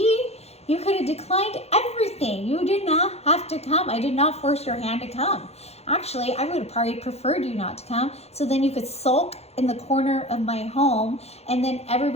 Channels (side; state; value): right; late; 0.31 ms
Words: You could have declined everything. You did not have to come. I did not force your hand to come. Actually, I would have probably preferred you not to come, so then you could sulk in the corner of my home, and then